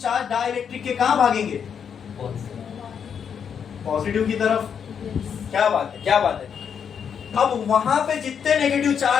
डाइलेक्ट्रिक के कहाँ भागेंगे? पॉजिटिव की तरफ। क्या बात है, क्या बात है? अब वहां पे जितने नेगेटिव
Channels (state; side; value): quieter; right; 7.4 dB